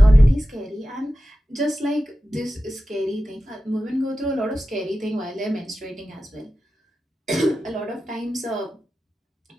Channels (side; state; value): both; normal; correlation 0.93